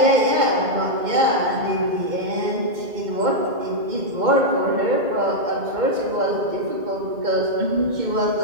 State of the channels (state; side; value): late; left; 2.1 ms